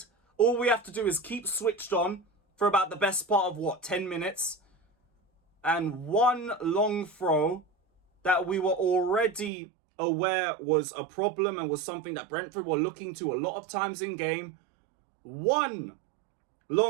All we have to do is keep switched on for about the best part of, 10 minutes. And one long throw that we were already aware was a problem and was something that Brentford were looking to a lot of times in game. One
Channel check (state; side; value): drops out; left; at 9.5 s